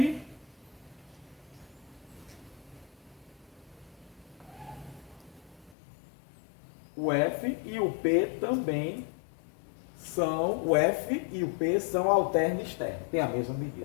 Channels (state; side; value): drops out; right; at 5.8 s